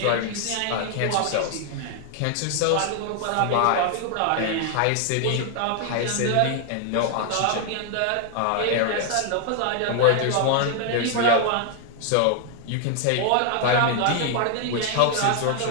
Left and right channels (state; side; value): different; both; correlation 0.00